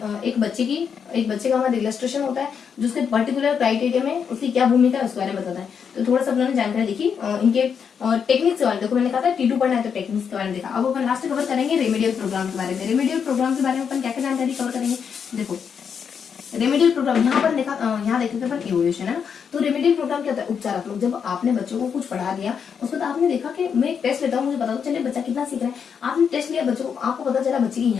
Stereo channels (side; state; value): right; quieter; 6.9 dB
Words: बच्चे का हमारा इलस्ट्रेशन होता है जो उसके पर्टिकुलर क्राइटेरिया में उसकी क्या भूमिका है उसके बारे में बताता है। तो थोड़ा सा अपने जानकारी देखी इनके टेक्निक्स के बारे में। देखो मैंने कहा था T2 पढ़ना है तो टेक्निक्स के बारे में देखा। अब अपन लास्ट कवर करेंगे रेमेडियल प्रोग्राम के बारे में। रेमेडियल प्रोग्राम के बारे में अपन क्या क्या जानकारी कवर करेंगे, देखो रेमेडियल प्रोग्राम यहाँ पर देखा, यहाँ देखे थे अपन इवोल्यूशन है ना। तो रेमेडियल प्रोग्राम क्या होता है, उपचारात्मक। जब आपने बच्चों को कुछ पढ़ा दिया, उसके बाद आपने देखा कि मैं एक टेस्ट लेता हूँ, मुझे पता तो चले बच्चा कितना सीख रहा है। आपने टेस्ट लिया बच्चों को, आपको पता चला बच्चे की